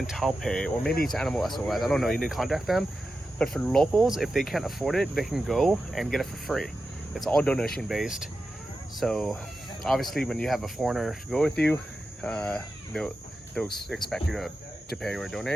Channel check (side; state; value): both; normal; correlation 0.91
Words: Taipei, or maybe it's Animal SOS, I don't know, you need to contact them. But for locals, if they can't afford it, they can go and get it for free. It's all donation based. So obviously when you have a foreigner to go with you, they'll expect you to pay or